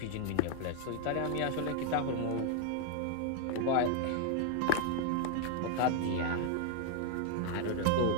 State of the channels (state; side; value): different; both; correlation 0.00